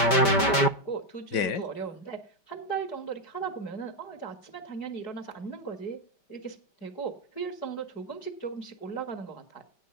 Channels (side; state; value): right; late; 5.1 ms